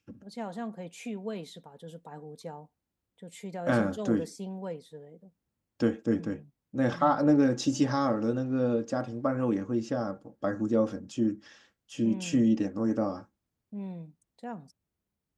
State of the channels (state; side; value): identical; both; correlation 1.00